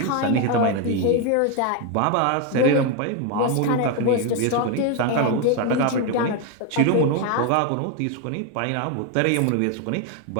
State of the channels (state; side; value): different; both; correlation 0.01